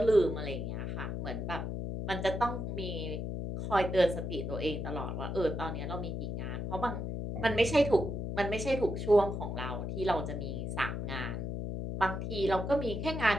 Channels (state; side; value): noise; left; hum, 4 dB below the sound